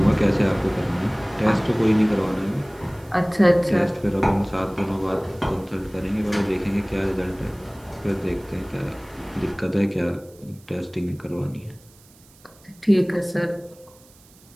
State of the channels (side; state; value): right; noise; hiss, 27 dB below the sound